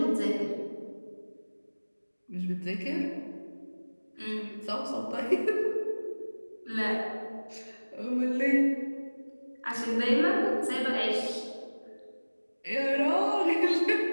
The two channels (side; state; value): both; inverted; correlation -1.00